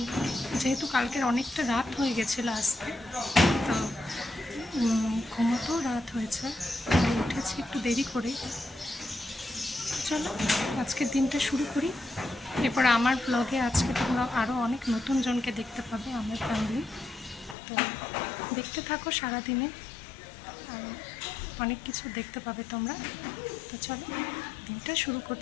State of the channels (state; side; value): drops out; right; at 17.6 s